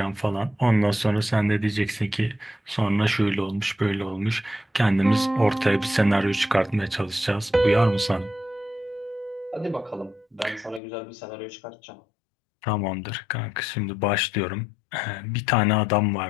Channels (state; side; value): drops out; right; at 10.8 s